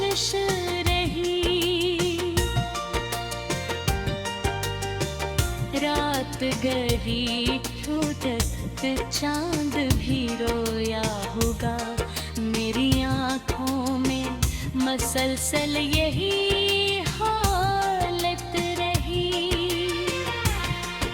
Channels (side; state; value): both; identical; correlation 1.00